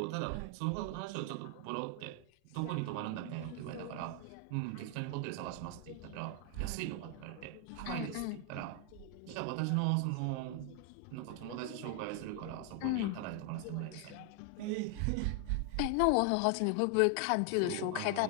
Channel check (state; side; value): different; both; correlation 0.00